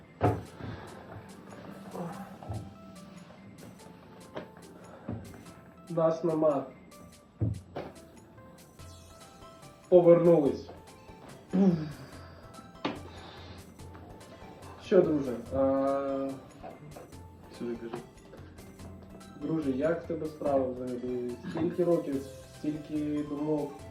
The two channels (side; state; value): both; identical; correlation 1.00